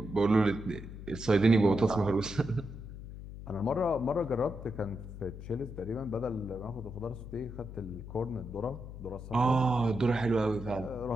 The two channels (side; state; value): left; noise; hum, 11 dB below the sound